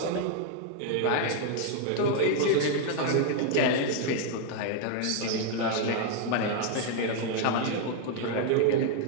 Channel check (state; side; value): different; both; correlation 0.00